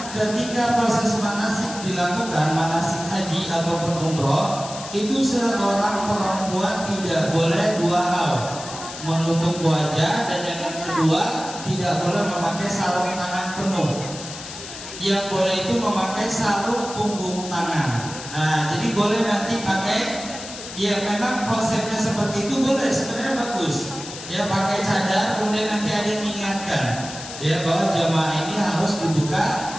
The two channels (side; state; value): left; noise; hiss, 11 dB below the sound